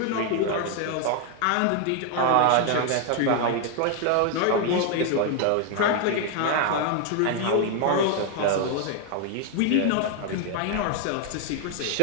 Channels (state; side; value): different; both; correlation 0.00